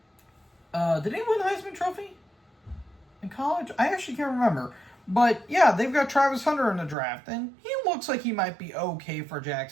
did he win the Heisman Trophy in college? I actually can't remember. But, yeah, they've got Travis Hunter in the draft, and he looks like he might be okay for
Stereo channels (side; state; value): left; drops out; at 7.0 s